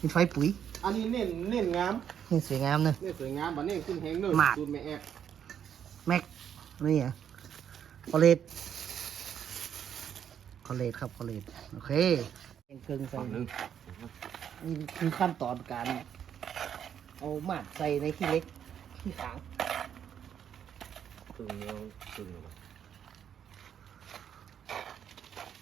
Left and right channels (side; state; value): left; quieter; 8.8 dB